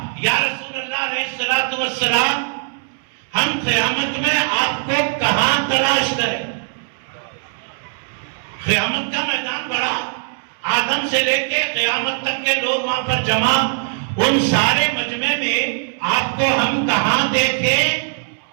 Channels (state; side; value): silent; left; 61 dB below the other